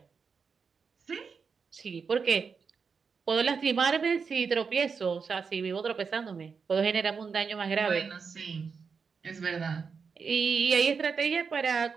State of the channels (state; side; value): quieter; left; 5.6 dB